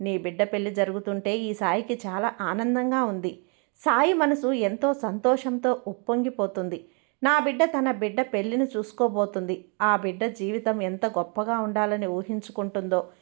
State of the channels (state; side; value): quieter; left; 36.3 dB